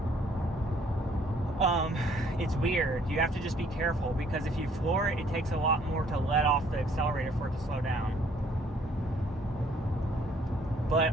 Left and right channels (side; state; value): both; normal; correlation 0.62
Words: it's weird. You have to just be careful, because if you floor it, it takes a lot more to let off the accelerator for it to slow down.